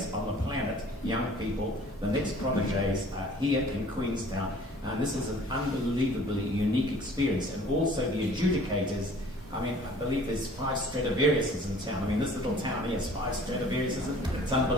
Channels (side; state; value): both; normal; correlation 0.51